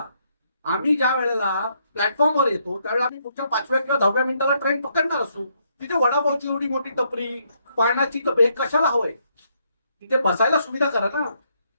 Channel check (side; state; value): both; inverted; correlation -0.74